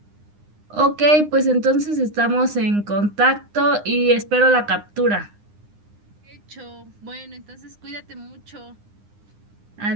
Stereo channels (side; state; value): left; late; 9.8 ms